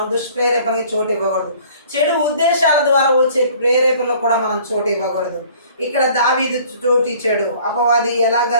దుష్ప్రేరేపణకి చోటు ఇవ్వకూడదు. చెడు ఉద్దేశాల ద్వారా వచ్చే ప్రేరేపణలకు కూడా మనం చోటు ఇవ్వకూడదు. ఇక్కడ దావీదు చోటు ఇచ్చాడు. అపవాది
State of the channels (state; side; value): inverted; both; correlation -0.53